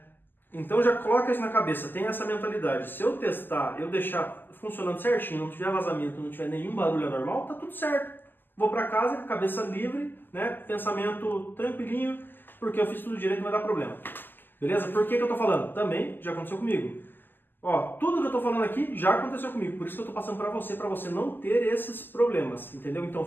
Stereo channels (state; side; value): late; right; 0.092 ms